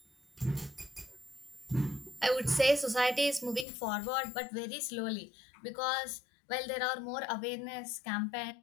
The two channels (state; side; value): drops out; right; at 3.7 s